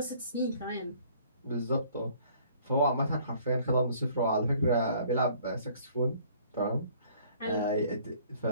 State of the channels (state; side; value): inverted; both; correlation -0.57